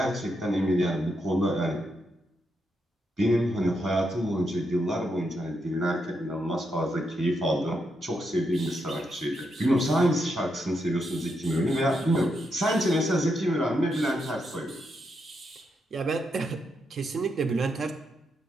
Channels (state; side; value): normal; both; correlation 0.82